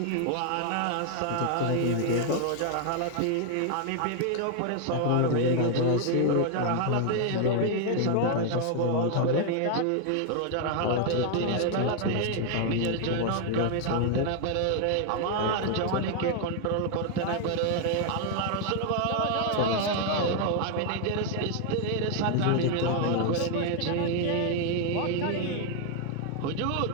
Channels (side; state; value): both; different; correlation 0.00